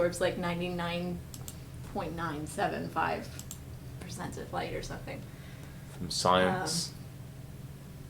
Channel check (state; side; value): identical; both; correlation 1.00